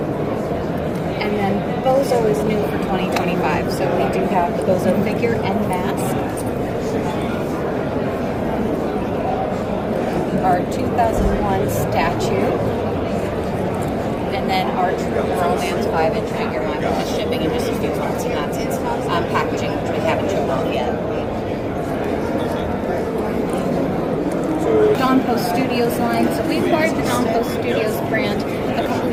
And then Bozo is new for 2025, so we do have the Bozo figure and mask. Our 2001 statue, and then our True Romance 5-inch figure line, which is shipping in just a few months, and that's its packaging, which we haven't shown off yet. Dawn Post Studios line. So we acquired the Dawn Post Studios brand a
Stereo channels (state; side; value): identical; both; correlation 1.00